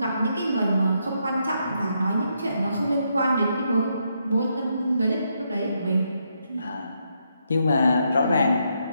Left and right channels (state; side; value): inverted; both; correlation -0.78